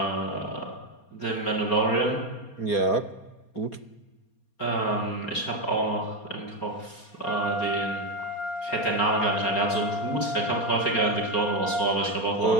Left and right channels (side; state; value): right; late; 4.3 ms